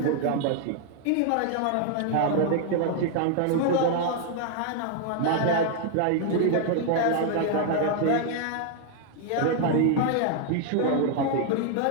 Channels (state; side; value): different; both; correlation 0.00